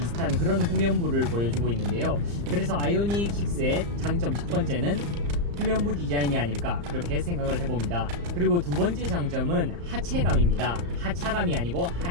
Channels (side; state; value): left; late; 35 ms